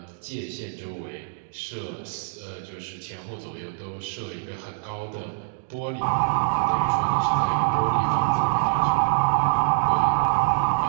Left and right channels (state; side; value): silent; left; digital silence